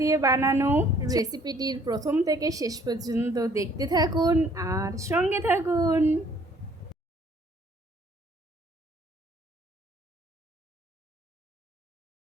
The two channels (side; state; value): both; normal; correlation 0.60